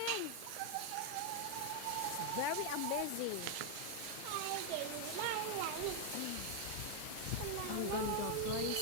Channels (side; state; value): both; different; correlation 0.00